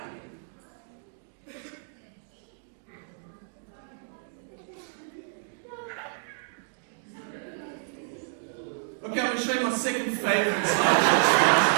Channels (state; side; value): silent; left; digital silence